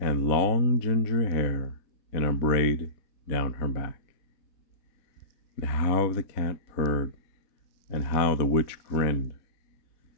long ginger hair in a braid down her back. And how the cat purred, and how the witch grinned,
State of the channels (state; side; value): late; right; 4.0 ms